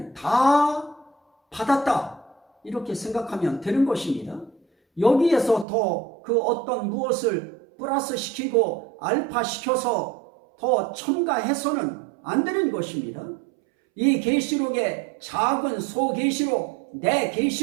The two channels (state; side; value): drops out; left; at 5.7 s